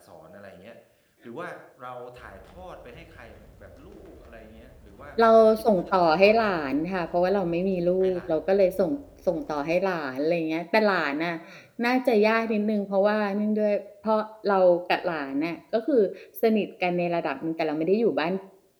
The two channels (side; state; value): both; identical; correlation 1.00